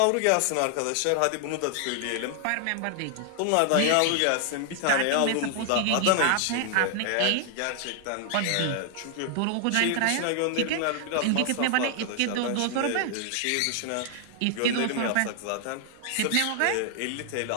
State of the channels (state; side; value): different; both; correlation 0.00